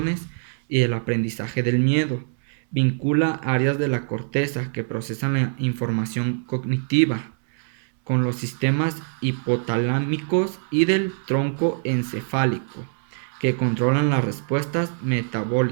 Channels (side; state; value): left; silent; 63 dB below the other